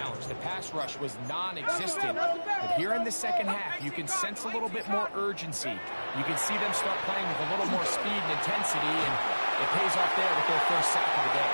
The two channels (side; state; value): both; inverted; correlation -1.00